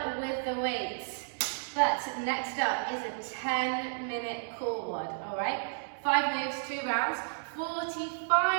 with the weights. But next up is a 10-minute core WOD, all right? 5 moves, 2 rounds,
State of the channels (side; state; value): left; silent; 56 dB below the other